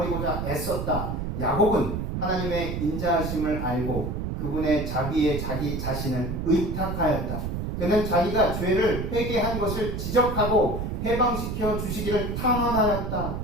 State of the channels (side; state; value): right; noise; rumble, 3 dB below the sound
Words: 애썼다. 야곱은 하나님의 인자하심을 알고 그 그분의 자기 자신을 의탁하였다. 그는 자기가 죄를 회개한 것을 지적하고 해방시켜 주시기를 탐험하였다.